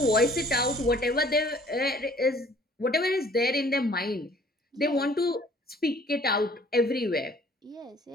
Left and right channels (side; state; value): both; normal; correlation 0.56